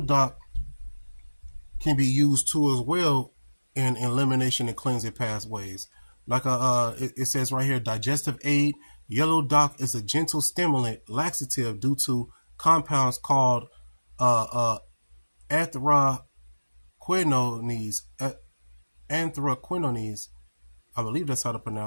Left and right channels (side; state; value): both; inverted; correlation -1.00